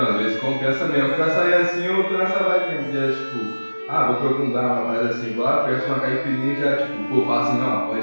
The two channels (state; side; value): inverted; both; correlation -1.00